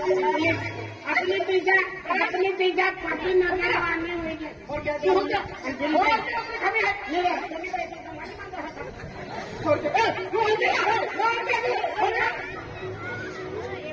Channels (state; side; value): identical; both; correlation 1.00